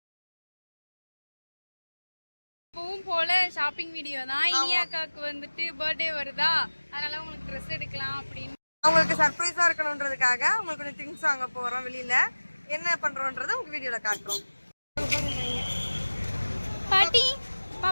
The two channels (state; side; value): inverted; both; correlation -1.00